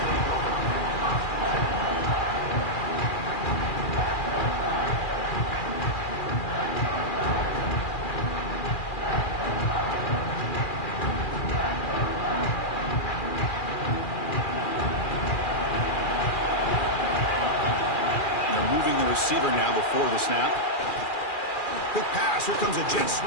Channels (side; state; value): right; late; 2.4 ms